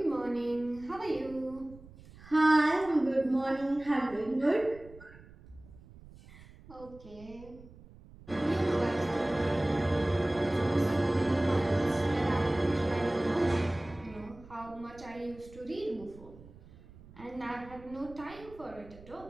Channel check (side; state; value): right; noise; rumble, 21 dB below the sound